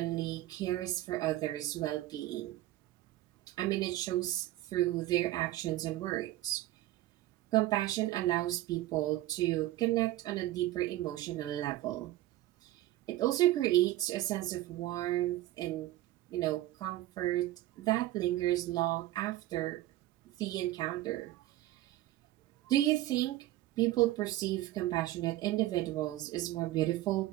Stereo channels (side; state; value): left; quieter; 15.5 dB